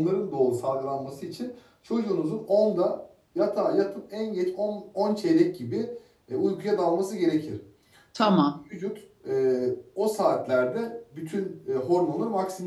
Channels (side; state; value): both; identical; correlation 1.00